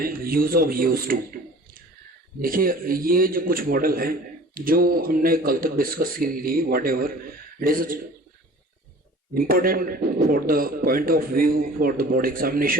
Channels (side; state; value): both; normal; correlation 0.45